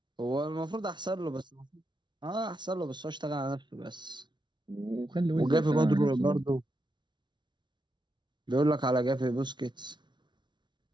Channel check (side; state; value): left; late; 0.22 ms